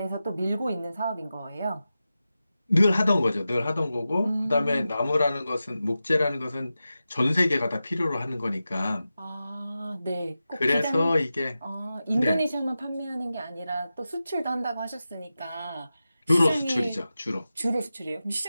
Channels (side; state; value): both; inverted; correlation -0.93